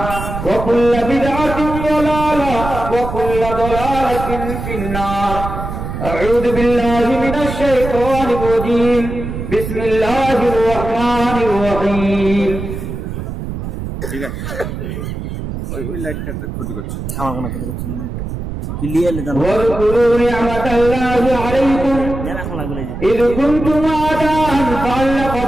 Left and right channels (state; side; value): noise; right; rumble, 6 dB below the sound